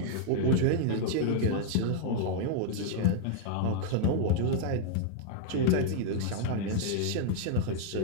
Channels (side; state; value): both; different; correlation -0.01